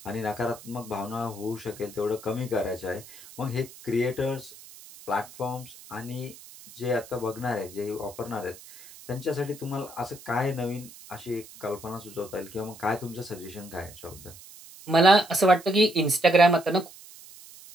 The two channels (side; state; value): right; noise; hiss, 18 dB below the sound